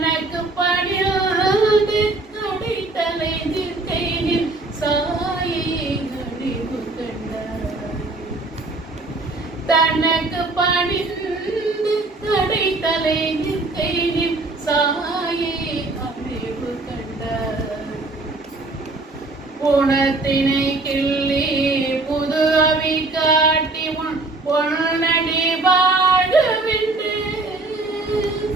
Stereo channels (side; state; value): left; quieter; 3.2 dB